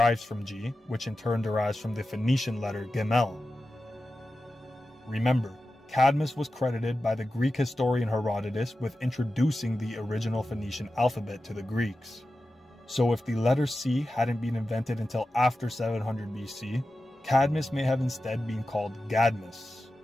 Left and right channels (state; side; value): normal; both; correlation 0.93